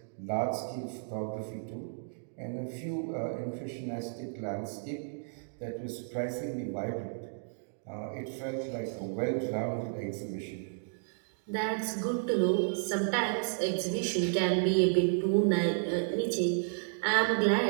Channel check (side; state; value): left; silent; digital silence